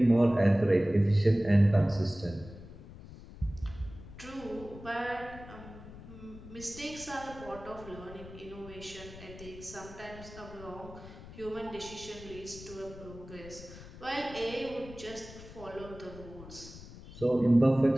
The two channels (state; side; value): noise; left; rumble, 16 dB below the sound